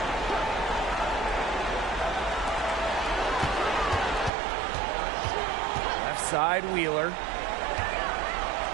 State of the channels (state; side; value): drops out; left; at 4.3 s